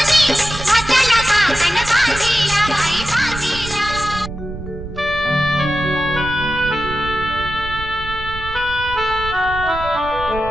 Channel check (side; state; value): right; noise; rumble, 10 dB below the sound